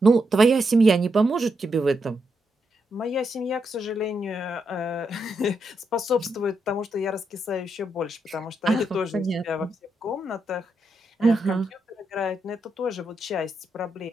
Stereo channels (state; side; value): normal; both; correlation 0.82